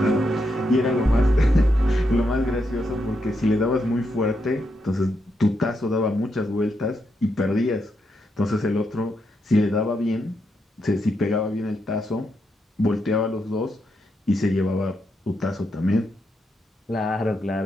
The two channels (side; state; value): both; normal; correlation 0.82